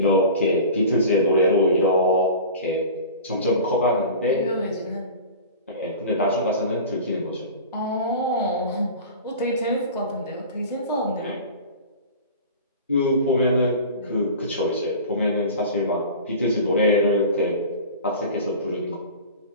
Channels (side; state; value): both; inverted; correlation -0.36